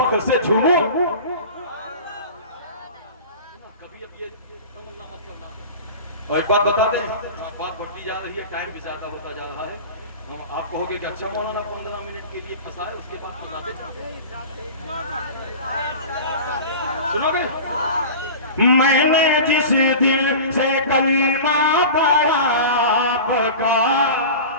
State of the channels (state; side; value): inverted; both; correlation -0.34